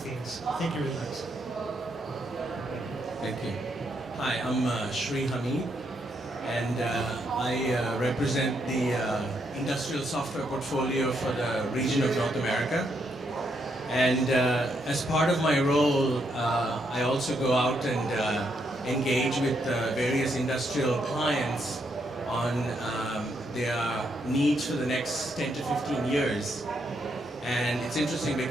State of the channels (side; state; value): both; normal; correlation 0.77